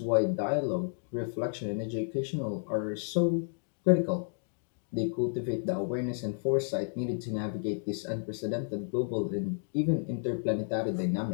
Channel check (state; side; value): silent; right; digital silence